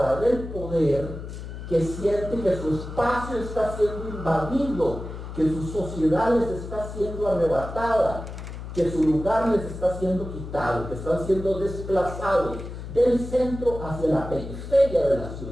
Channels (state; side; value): noise; left; hum, 9 dB below the sound